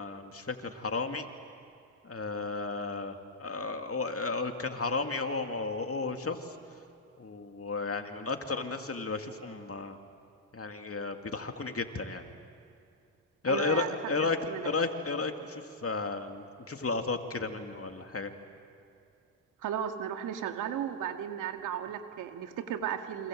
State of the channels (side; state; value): both; normal; correlation -0.11